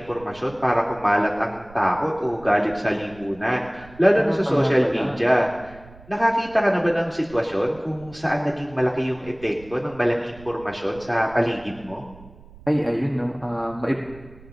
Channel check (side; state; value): right; noise; rumble, 22 dB below the sound